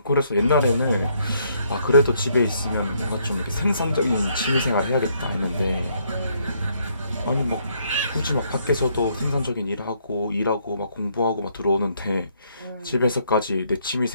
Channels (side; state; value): both; inverted; correlation -0.70